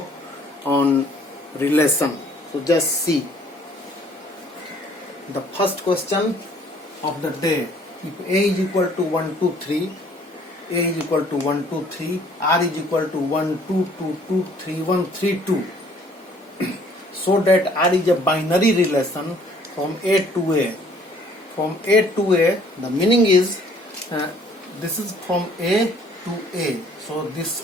on relation. So just see the first question of the day. If A is equal to 1, 2, 3, A is equal to 1, 2, 3, R is equal to 1, 2, 2, 2, 3, 1, 3, 2. So that R is a binary relation from A to A. From A to A, the meaning is this is from A to A. So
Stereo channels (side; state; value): both; normal; correlation 0.58